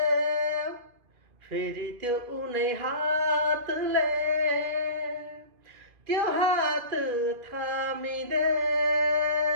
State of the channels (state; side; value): late; left; 2.4 ms